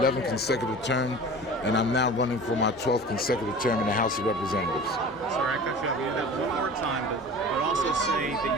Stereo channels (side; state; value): both; normal; correlation 0.39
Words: consecutive terms, and I'm now running for my 12th consecutive term in the House of Representatives. Sorry, I cut you off. You do that one more time, but also say